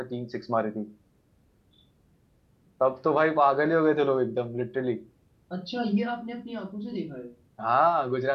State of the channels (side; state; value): both; identical; correlation 1.00